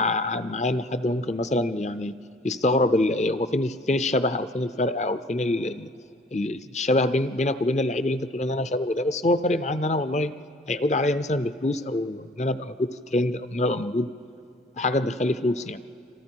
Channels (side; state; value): both; normal; correlation 0.53